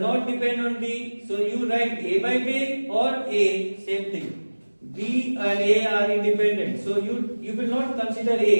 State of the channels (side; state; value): both; inverted; correlation -1.00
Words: not depend on B, so you write A by B or A, same thing. B and A are independent, so you will not consider